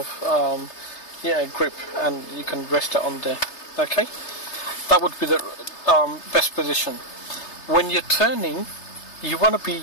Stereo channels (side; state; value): right; late; 3.3 ms